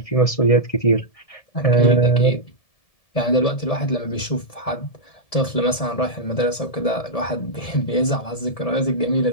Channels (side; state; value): right; late; 1.7 ms